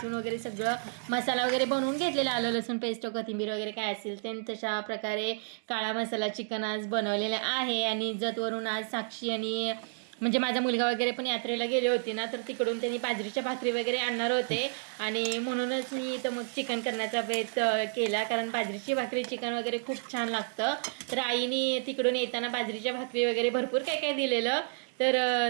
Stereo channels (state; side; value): silent; left; digital silence